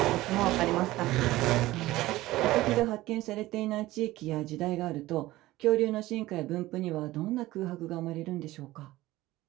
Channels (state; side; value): quieter; left; 17.3 dB